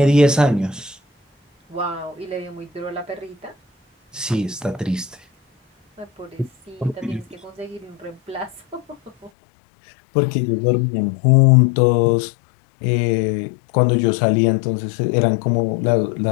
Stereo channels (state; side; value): drops out; right; at 9.3 s